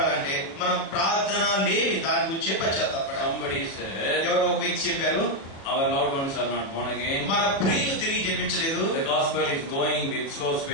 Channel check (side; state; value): right; late; 37 ms